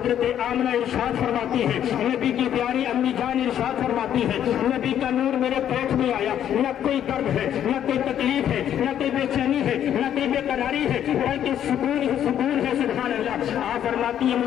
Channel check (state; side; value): quieter; right; 10.2 dB